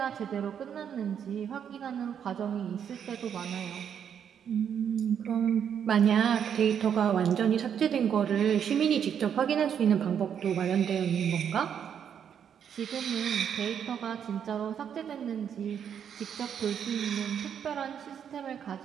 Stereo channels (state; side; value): quieter; left; 8.3 dB